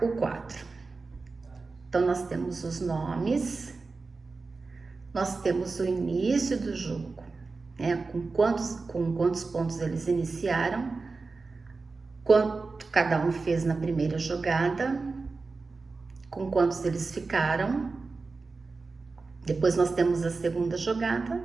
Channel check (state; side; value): quieter; left; 4.0 dB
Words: o quadro. Então, nós temos os nomes, nós temos o início do jogo, né? Com quantos pontos eles iniciaram, quanto cada um fez na primeira jogada, com quantos eles ficaram. Depois nós temos a segunda jogada